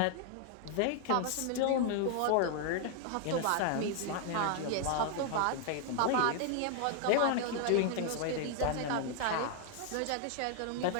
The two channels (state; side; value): different; both; correlation 0.00